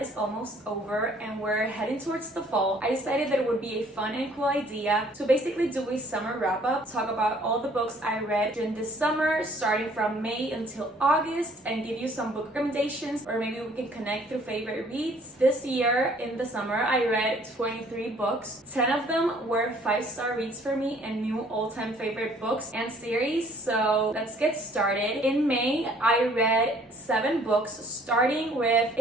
almost over and we're heading towards the fall, I decided that it would be a fun and cool idea to basically do a summer wrap-up, talk about all the books I read during this summer, starting from May until August, and give you some book recommendations, or maybe we can connect through favorite reads. This year in the summer, I read 23 books. 10 of them were 5-star reads for me and new all-time favorite books and series. So let's get started. In May, I read 7 books, starting with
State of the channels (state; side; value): normal; both; correlation 0.58